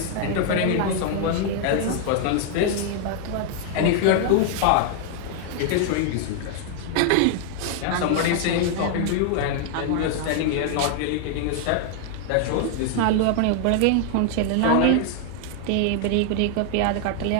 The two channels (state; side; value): different; both; correlation 0.00